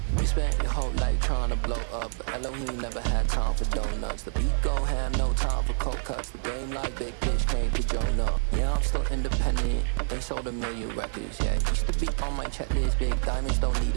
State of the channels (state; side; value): silent; left; digital silence